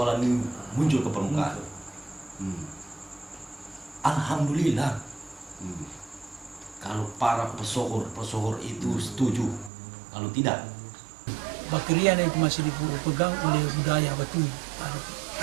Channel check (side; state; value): left; drops out; at 9.7 s